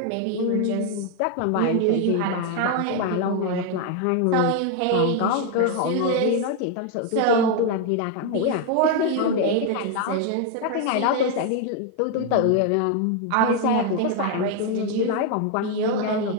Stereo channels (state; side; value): different; both; correlation 0.01